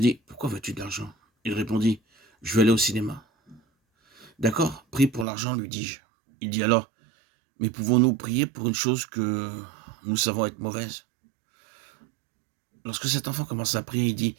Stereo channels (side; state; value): left; drops out; at 5.2 s